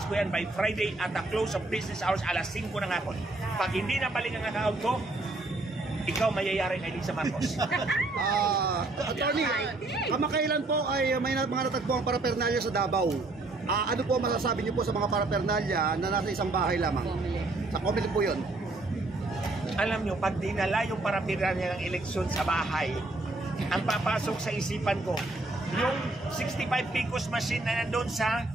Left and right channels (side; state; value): left; quieter; 3.0 dB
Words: ko yan by Friday at the close of business hours, alas 5 ng hapon. Pag hindi na balik ang account ko, ikaw mayayari kay Lisa Marcos. Attorney, kamakailan po ay may mga natagpo ang parapernalya sa Davao. Ano po masasabi niyo po sa mga parapernalya na nasa isang bahay lamang? Sa COMELEC po yun. Alam nyo, pag dinala yung parapernalya ng eleksyon sa bahay, ang papasok sa isipan ko, yung 65 Picos machine na nandun sa